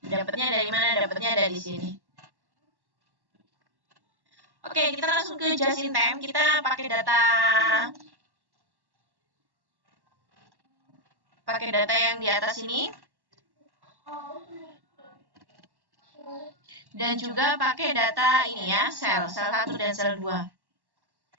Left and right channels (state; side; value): late; left; 1.1 ms